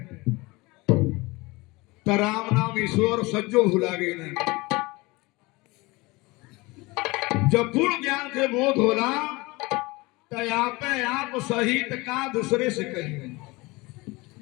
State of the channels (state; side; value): quieter; right; 23.3 dB